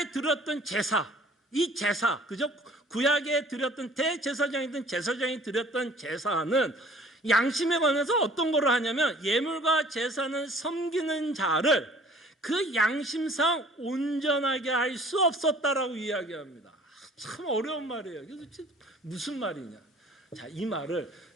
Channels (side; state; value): both; normal; correlation 0.52